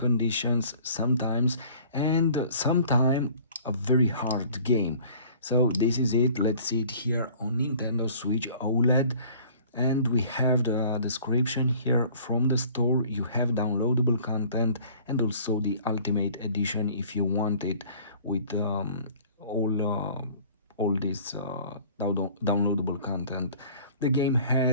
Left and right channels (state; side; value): inverted; both; correlation -0.50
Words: sometimes, and sometimes a very hard game. So this is it. Let's see it here on Nintendo Switch OLED, and we have the description here from the store. You have downloadable content and also the ultimate edition if you want it, with all all this downloadable content. The game